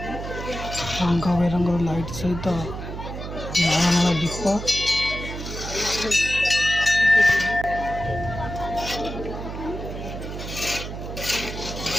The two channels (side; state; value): right; noise; hum, 8 dB below the sound